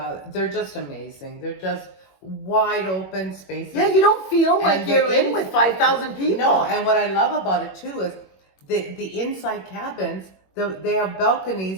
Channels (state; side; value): late; right; 21 ms